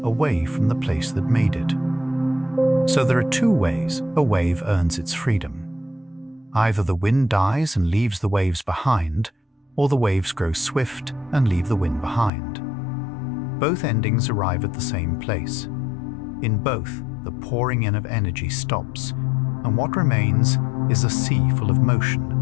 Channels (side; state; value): right; drops out; at 12.3 s